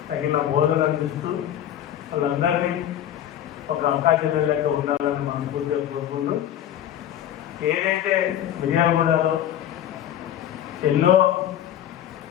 తగిన బోధన అందిస్తూ వాళ్ళందరినీ ఒక అక్కాచెల్లెళ్ళతో ఉండాలని మనస్ఫూర్తిగా కోరుకుంటూ, ఏదైతే మిర్యాలగూడలో ఎన్నో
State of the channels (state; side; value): quieter; right; 11.1 dB